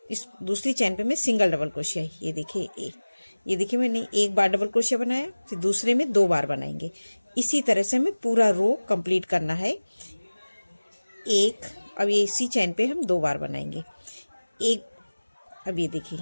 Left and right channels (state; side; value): inverted; both; correlation -1.00